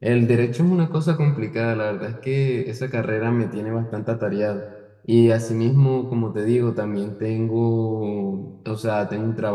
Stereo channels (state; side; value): identical; both; correlation 1.00